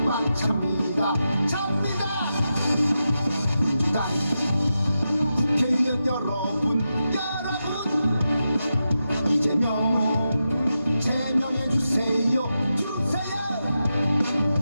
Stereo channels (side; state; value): both; inverted; correlation -0.88